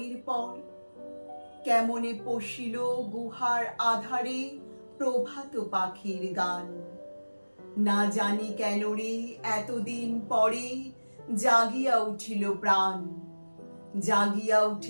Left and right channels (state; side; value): inverted; both; correlation -1.00